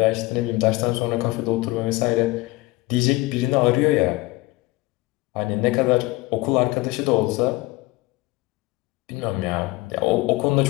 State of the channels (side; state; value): right; quieter; 21.0 dB